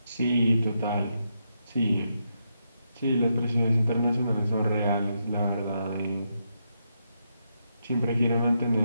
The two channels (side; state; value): both; inverted; correlation -0.82